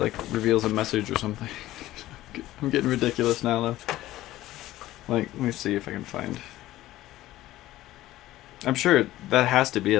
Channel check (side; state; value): right; quieter; 15.6 dB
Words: reveals a message or something. I'm getting ridiculous now, though. Like, let me see if I can find... I'm sure that has to be